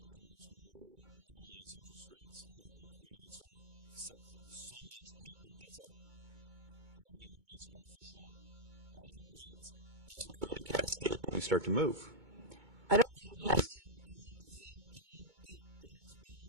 towards more normalized interest rates, have we created sort of so much paper that's at, in many ways, artificial rates? Does it create a cascade when we start to move? I don't think it has to. I think the Fed can get its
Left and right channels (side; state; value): left; late; 2.2 ms